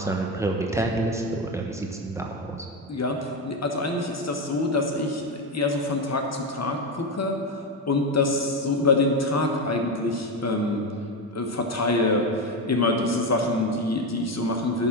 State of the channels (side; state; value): both; normal; correlation 0.14